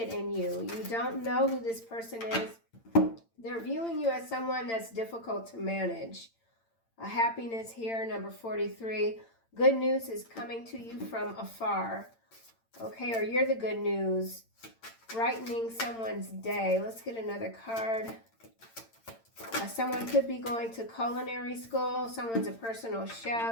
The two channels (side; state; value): right; late; 8.8 ms